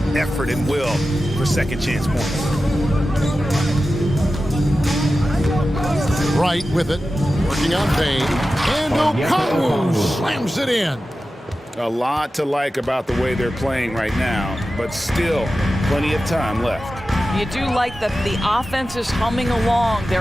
effort and will for second chance points. Right with it, working on Payne. And Okongwu slams it in. A lot to like about the way they're playing right now, but still plenty of time left. You do like that the offense is humming along.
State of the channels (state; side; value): normal; both; correlation 0.93